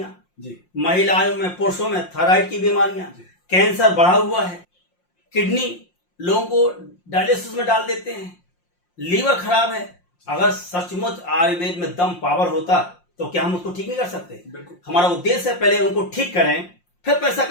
महिलाओं में पुरुषों में थायराइड की बीमारियां, कैंसर बढ़ा हुआ है, किडनी लोगों को डायलिसिस में डाल देते हैं, लीवर खराब है। अगर सचमुच आयुर्वेद में दम पावर होता तो क्या हम उसको ठीक नहीं कर सकते? हमारा उद्देश्य है पहले उनको ठीक करें, फिर पैसा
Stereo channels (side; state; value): right; late; 5.6 ms